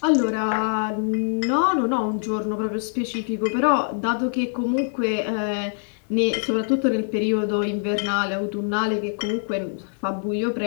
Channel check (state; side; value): silent; right; digital silence